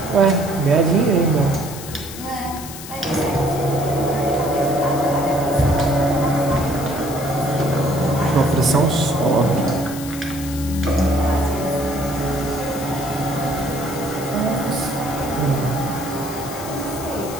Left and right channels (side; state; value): left; noise; hiss, 12 dB below the sound